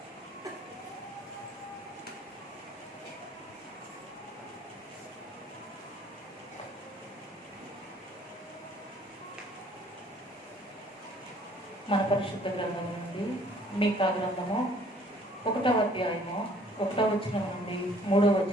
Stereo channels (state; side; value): normal; both; correlation 0.57